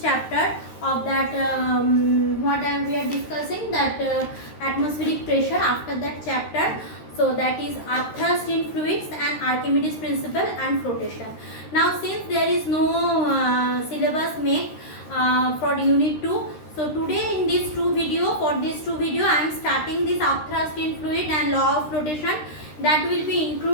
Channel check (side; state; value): right; late; 13 ms